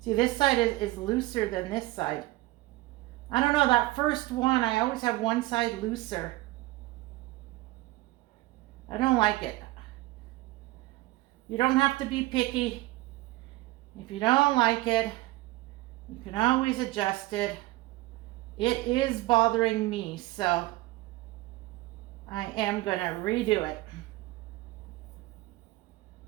See, this side is looser than this side. I don't know, that first one, I always have one side looser. I don't like it. You don't have to be picky. If you don't like it, you can always adjust it. It is bothering me, so I am gonna redo it.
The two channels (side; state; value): left; quieter; 19.1 dB